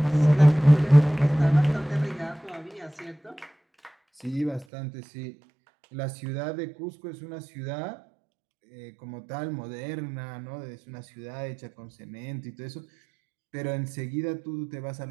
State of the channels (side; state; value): left; drops out; at 4.7 s